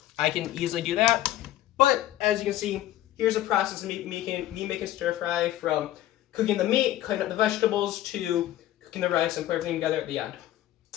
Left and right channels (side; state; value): right; quieter; 13.9 dB